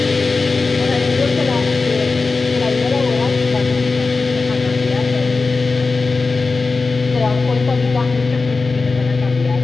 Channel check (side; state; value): right; quieter; 4.1 dB